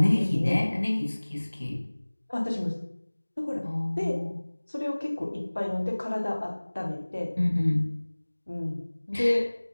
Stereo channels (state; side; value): inverted; both; correlation -1.00